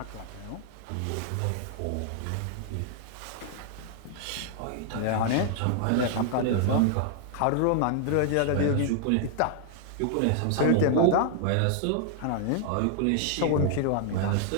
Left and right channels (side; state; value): both; different; correlation 0.00